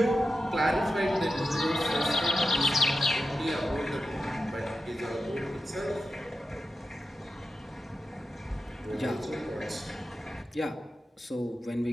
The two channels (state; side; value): normal; both; correlation 0.90